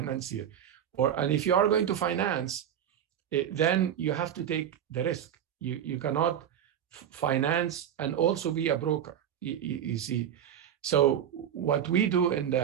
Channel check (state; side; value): quieter; left; 9.6 dB